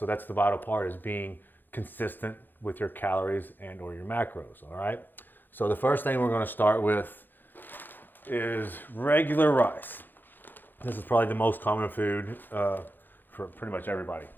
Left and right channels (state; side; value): late; right; 0.091 ms